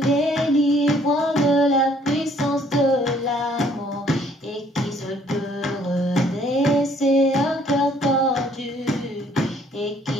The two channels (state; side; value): normal; both; correlation 0.62